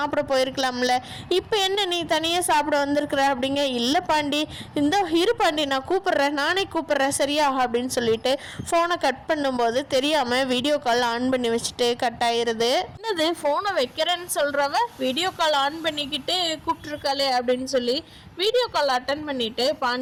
போயிருக்கலாம்ல, இப்போ என்ன நீ தனியாக சாப்பிட வந்திருக்கிற அப்படிங்க. இல்லை பாண்டி, இந்த இரு பாண்டி நான் கூப்பிட்றேன், நானே கூப்பிட்றேன் சரியா அப்படின்னு சொல்லிட்டு ஃபோனை கட் பண்ணும்போது தெரியாமல் வீடியோ கால் ஆன் பண்ணி வச்சுட்டு கட் ஆயிடுது. என்னது ஃபோனை வைக்கிறேன்னு சொல்கிறவ வீடியோ கால் ஆன் பண்ணிக்கிட்டு கூப்பிட்ருக்காளே அப்படின்னு சொல்லி வீடியோ கால் அட்டன் பண்ணிட்டு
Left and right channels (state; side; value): identical; both; correlation 1.00